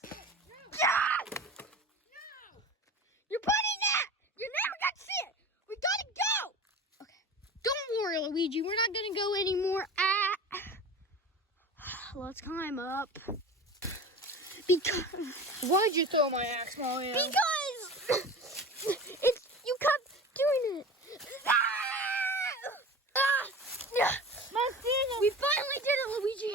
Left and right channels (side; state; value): both; normal; correlation 0.34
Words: God! No! You're putting that! You're never gonna see it! We gotta go! Okay. Don't worry, Luigi. We're not gonna go anymore. Let's climb up. Because... Why'd you throw my axe, Mario? Because... You kept doing it. My finger. We finally did it, Luigi.